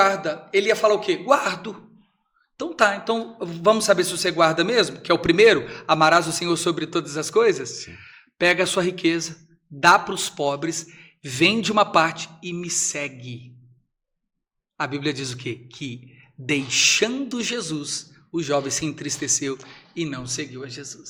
ele ia falar o quê? Guardo. Então tá, então vamos saber se você guarda mesmo, que é o primeiro, amarás o Senhor sobre todas as coisas? Sim. Pega a sua riqueza, dá para os pobres, vende uma parte e me segue. A Bíblia diz o quê? Que deixando Jesus, o jovem se entristeceu e não seguiu a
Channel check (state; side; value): identical; both; correlation 1.00